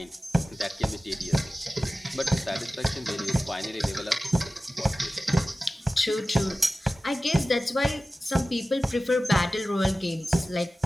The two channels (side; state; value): both; normal; correlation 0.96